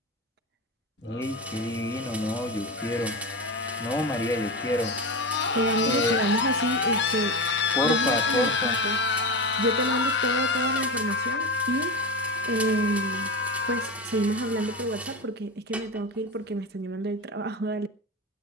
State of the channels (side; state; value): both; normal; correlation 0.21